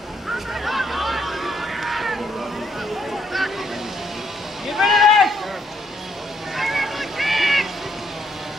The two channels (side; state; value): both; normal; correlation 0.72